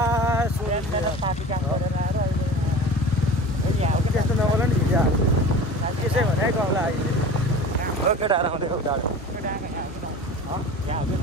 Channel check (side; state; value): both; normal; correlation 0.37